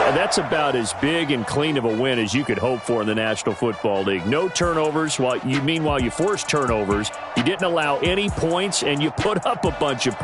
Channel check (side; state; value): both; identical; correlation 1.00